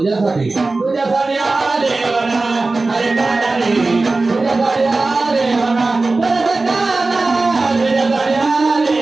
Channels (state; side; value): quieter; left; 3.4 dB